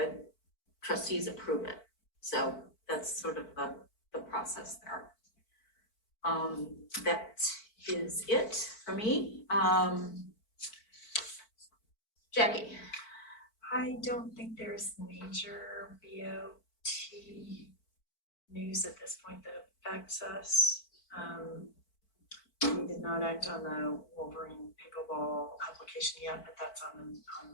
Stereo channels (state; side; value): late; right; 4.5 ms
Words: trustees approve it. So that's sort of the process there. That is it for me. Jackie. I don't think there's major BOT news at this point that affects us. We did not act on the Wolverine pickleball application yet, but that's on